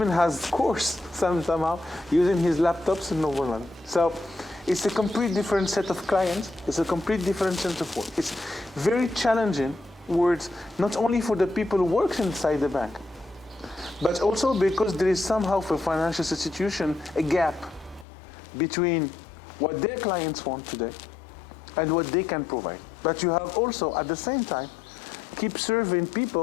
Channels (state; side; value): drops out; right; at 18.1 s